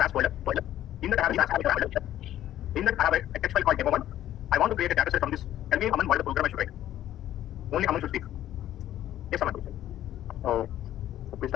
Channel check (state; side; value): quieter; right; 12.5 dB